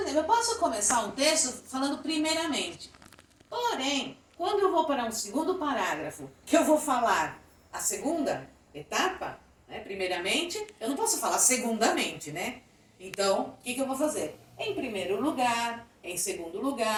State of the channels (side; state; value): both; identical; correlation 1.00